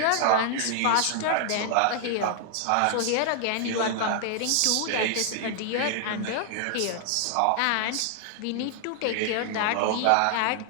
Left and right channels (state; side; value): different; both; correlation 0.00